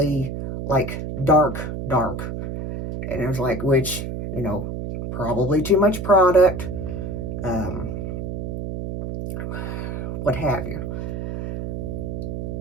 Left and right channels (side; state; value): right; noise; hum, 5 dB below the sound